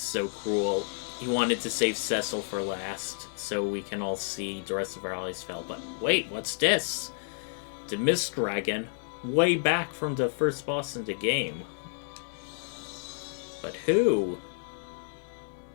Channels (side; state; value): right; silent; 58 dB below the other